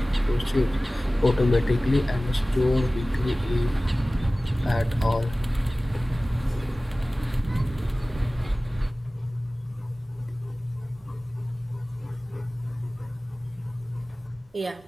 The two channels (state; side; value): normal; both; correlation 0.97